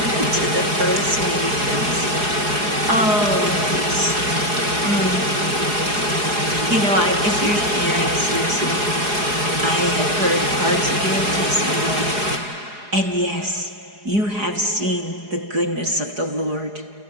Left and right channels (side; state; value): left; late; 4.8 ms